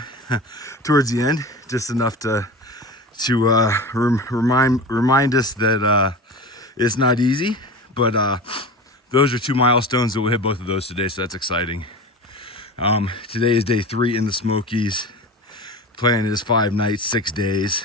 towards the end, just enough to remind us that it's not easy, but those are two milestones that we'll hit both of those today, so that's exciting. Today is day 3 in the Smokies. Plan is 5 nights, 6 days.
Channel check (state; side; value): normal; both; correlation 0.30